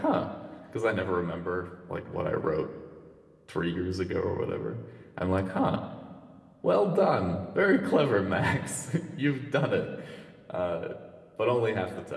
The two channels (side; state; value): both; identical; correlation 1.00